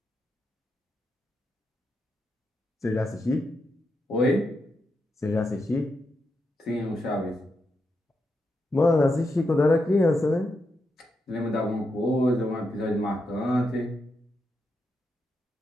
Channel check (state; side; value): normal; both; correlation 0.84